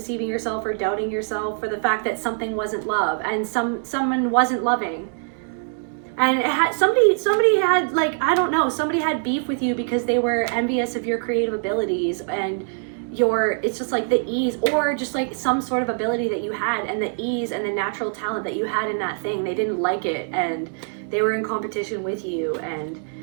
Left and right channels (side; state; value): left; silent; 60 dB below the other